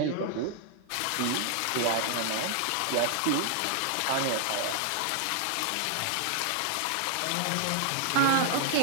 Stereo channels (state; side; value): different; both; correlation -0.01